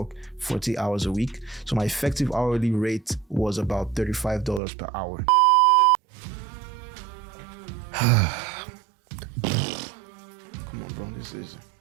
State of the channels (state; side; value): drops out; left; at 4.6 s